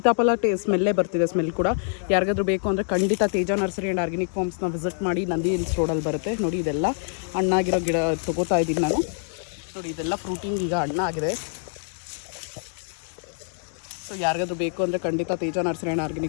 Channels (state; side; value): silent; right; 62 dB below the other